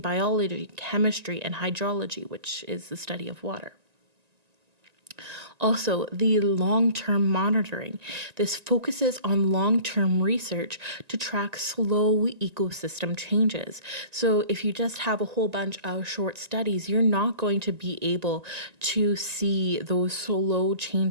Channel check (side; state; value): left; late; 1.9 ms